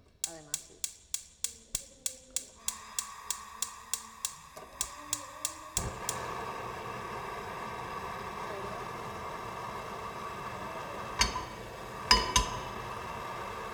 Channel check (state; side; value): identical; both; correlation 1.00